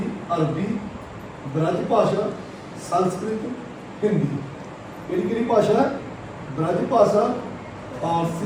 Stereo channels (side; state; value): both; identical; correlation 1.00